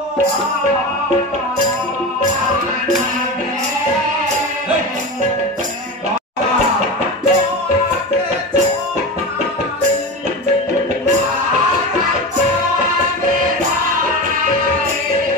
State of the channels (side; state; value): both; normal; correlation 0.25